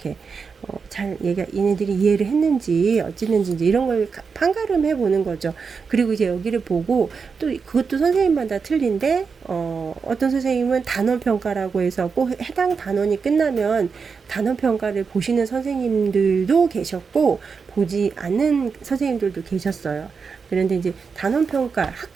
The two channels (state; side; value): quieter; left; 5.4 dB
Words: 잘 얘네들이 이해를 했는지 어찌는지 이제 이런 걸 판가름해 보는 거죠. 그리고 이제 여기를 보고 또 그것도 선생님마다 틀린데 어떤 선생님은 단원 평가라고 해서 꼭 해당 단원이 끝나면 단원 평가를 보시는 선생님들도 계셨고 보지 않는 선생님들도 계셨어요. 그런데 이제 단원평가,